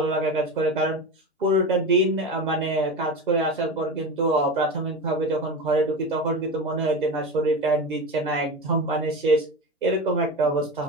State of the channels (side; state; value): both; normal; correlation 0.24